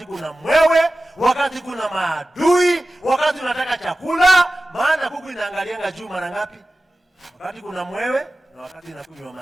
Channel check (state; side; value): normal; both; correlation 0.95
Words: kuna mwewe, wakati kuna maadui, wakati unataka chakula. Maana kuku inaangalianga juu mara ngapi? Wakati kuna mwewe na wakati inakunywa